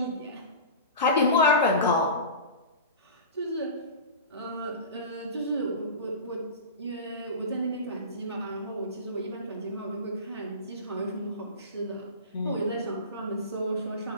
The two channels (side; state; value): both; inverted; correlation -0.30